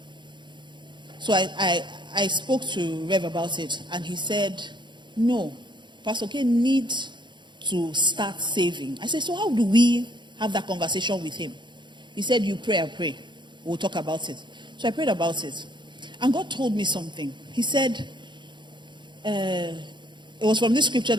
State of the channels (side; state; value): left; late; 0.22 ms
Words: So I spoke to Rev about it, and he said, no, Pastor K needs to start saving. I said, so how do we have that conversation with him? He said, you pray, I pray. We'll talk about it. So I prayed about it. And God told me something. He said, it was from this scripture